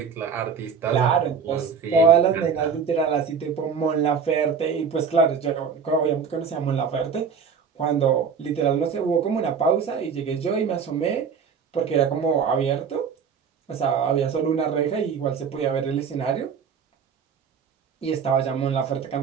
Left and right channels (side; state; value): left; quieter; 6.3 dB